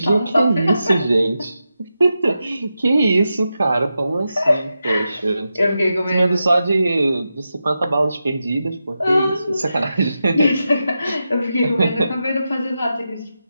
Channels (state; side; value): inverted; both; correlation -0.89